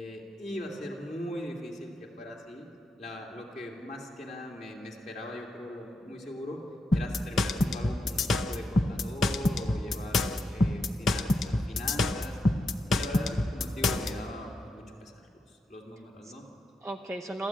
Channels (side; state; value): both; normal; correlation 0.84